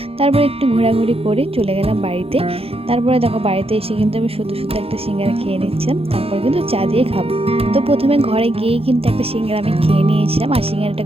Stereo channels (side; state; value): left; late; 0.28 ms